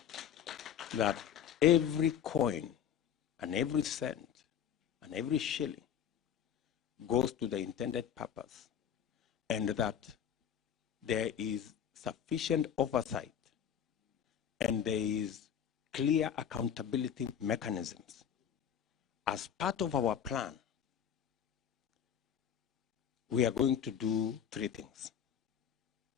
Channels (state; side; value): quieter; right; 8.9 dB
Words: that every coin and every cent and every shilling goes to the intended purpose, and that there is sufficient oversight and there is clear accountability mechanisms. As part of our plan, we are going to do three things.